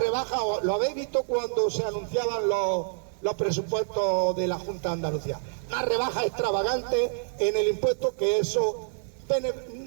lo habéis visto cuando se anunciaban los presupuestos de la Junta de Andalucía, una rebaja extravagante en el impuesto, que eso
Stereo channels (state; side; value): silent; left; 60 dB below the other